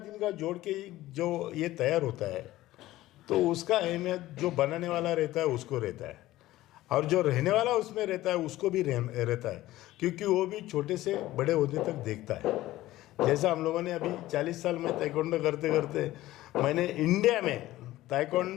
जोड़ के जो ये तैयार होता है, तो उसका अहमियत जो बनाने वाला रहता है उसको रहता है, और जो रहने वाला उसमें रहता है उसको भी रहता है, क्योंकि वो भी छोटे से बड़े होने तक देखता है। जैसा हम लोगों ने अभी 40 साल में ताइक्वांडो करते करते, मैंने इंडिया में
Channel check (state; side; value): quieter; right; 16.1 dB